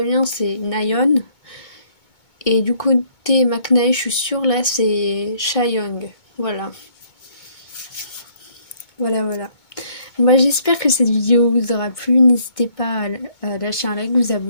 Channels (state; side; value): late; right; 2.2 ms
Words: bien, c'est Nayeon. Et du côté Maknae, je suis sûre, là, c'est Chaeyoung. Voilà. Voilà. Moi, j'espère que cette vidéo vous aura plu. N'hésitez pas à lâcher un like, vous